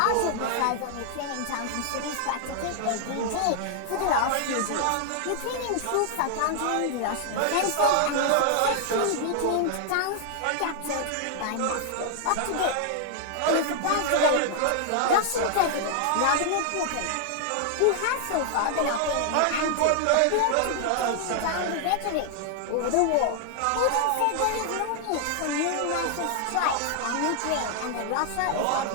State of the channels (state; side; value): different; both; correlation 0.00